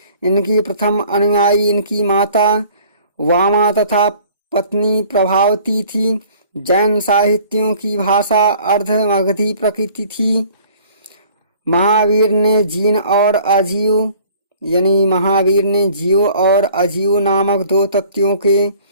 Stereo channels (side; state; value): both; inverted; correlation -0.53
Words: इनकी प्रथम अनुयायी इनकी माता वामा तथा पत्नी प्रभावती थी। जैन साहित्यों की भाषा अर्ध-मगधी प्रकृति थी। महावीर ने जीव और अजीव नामक 2 तत्वों के